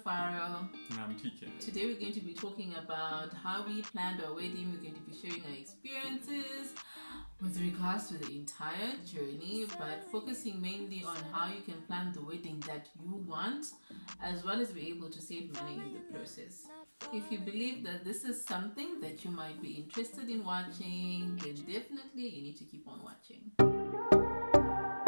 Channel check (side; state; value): both; inverted; correlation -1.00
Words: And I'm TK. Today we're going to be talking about how we planned our wedding. We're going to be sharing our experiences with regards to the entire journey, but focusing mainly on how you can plan the wedding that you want, as well as be able to save money in the process. If you believe that this is something that you might be interested in watching, then definitely you need to keep on watching.